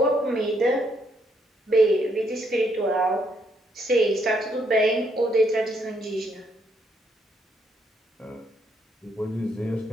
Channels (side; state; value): both; normal; correlation 0.73